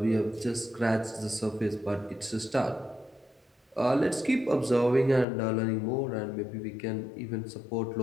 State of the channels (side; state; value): right; drops out; at 5.2 s